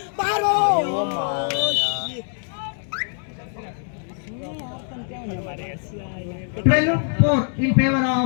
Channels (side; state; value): right; silent; 55 dB below the other